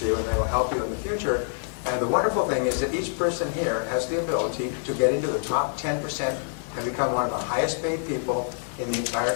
you and they will help you in the future. And the wonderful thing is that each person here has the ability to get into the top 10% and become one of the highest paid people in the entire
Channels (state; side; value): silent; right; digital silence